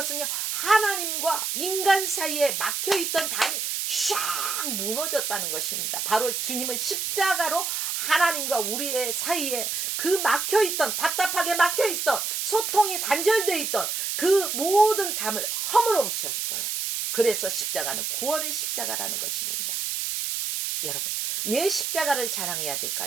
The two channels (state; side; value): noise; right; hiss, 1 dB below the sound